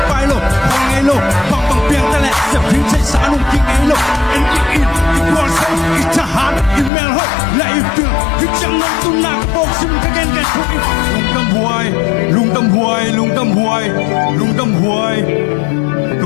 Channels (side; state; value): right; drops out; at 6.9 s